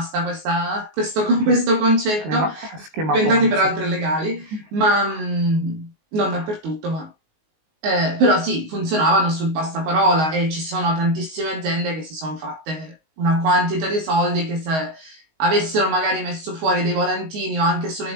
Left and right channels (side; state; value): left; late; 19 ms